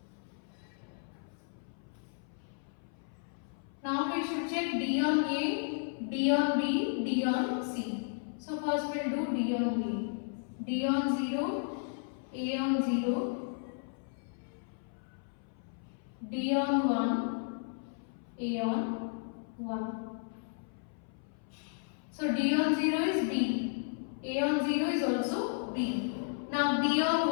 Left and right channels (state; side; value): silent; right; 55 dB below the other